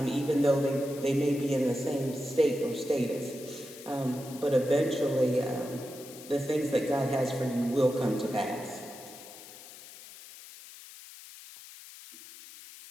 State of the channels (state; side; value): noise; left; hiss, 17 dB below the sound